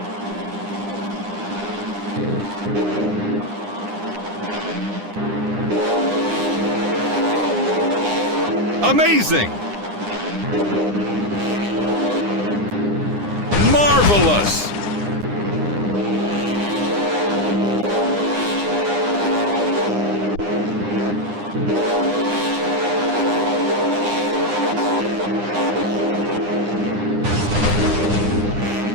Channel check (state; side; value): late; left; 9.8 ms